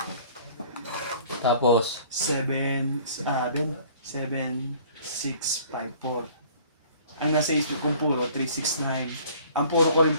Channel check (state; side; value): inverted; both; correlation -0.52